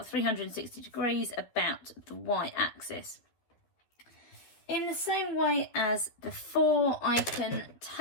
360 degrees about the y-axis. In the same way as before, I can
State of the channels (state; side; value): late; right; 12 ms